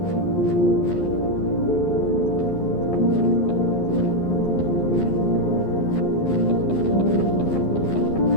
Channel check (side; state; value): right; late; 12 ms